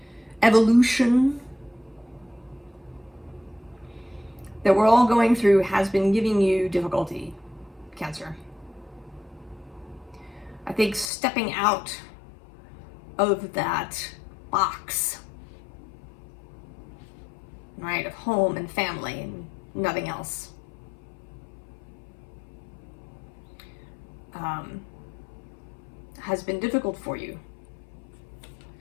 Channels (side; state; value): right; drops out; at 11.1 s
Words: evolution that we're all going through has been giving you difficulty, Cancer. I think stepping out of that box, right, of home and family and nothing else, has been difficult for you.